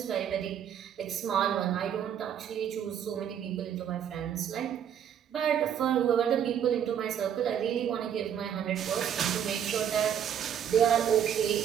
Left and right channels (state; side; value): quieter; left; 9.1 dB